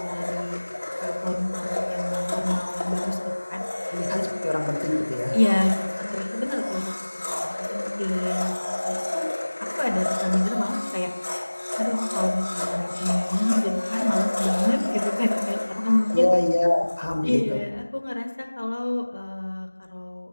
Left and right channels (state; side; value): inverted; both; correlation -1.00